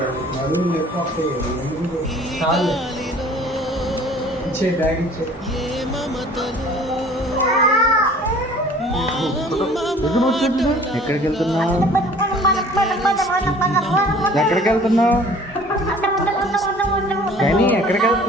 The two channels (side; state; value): both; normal; correlation 0.50